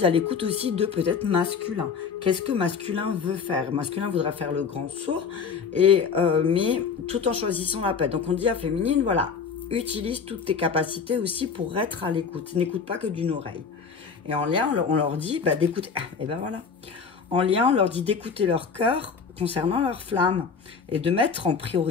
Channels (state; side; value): quieter; right; 5.8 dB